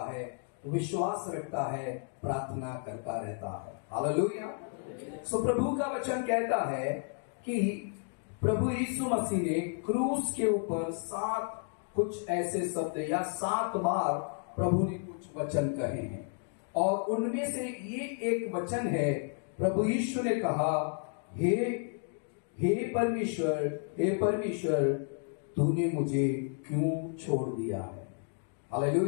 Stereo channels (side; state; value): right; silent; 56 dB below the other